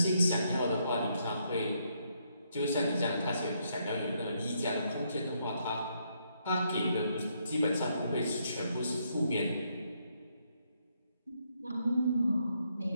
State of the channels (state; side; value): inverted; both; correlation -0.75